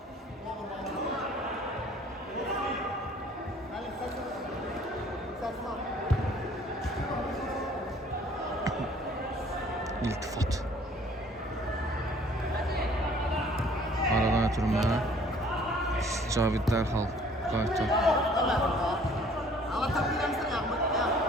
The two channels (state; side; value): normal; both; correlation 0.55